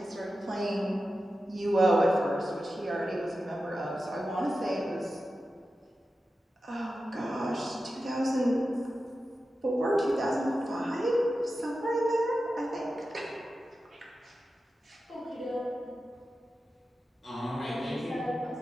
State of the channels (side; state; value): both; normal; correlation 0.92